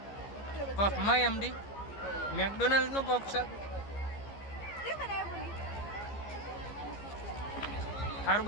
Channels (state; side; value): late; right; 15 ms